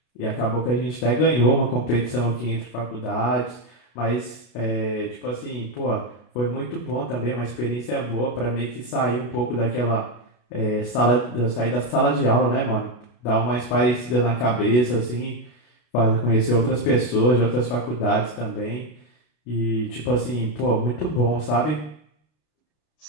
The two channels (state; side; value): late; right; 33 ms